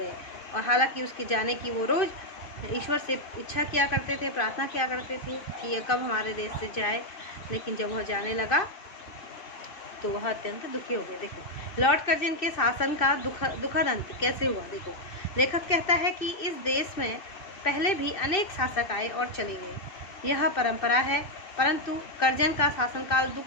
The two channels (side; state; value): right; late; 2.6 ms